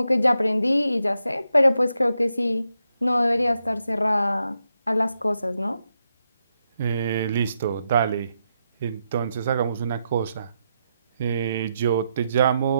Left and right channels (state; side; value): inverted; both; correlation -0.84